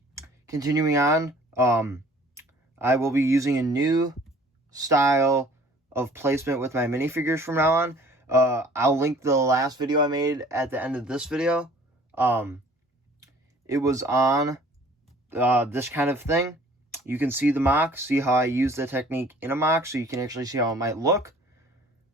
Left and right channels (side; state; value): both; normal; correlation 0.52